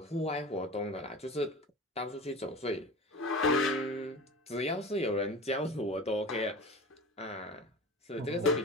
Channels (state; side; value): normal; both; correlation 0.34